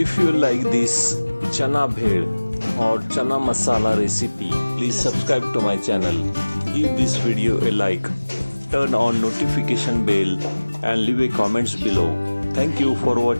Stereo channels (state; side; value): inverted; both; correlation -1.00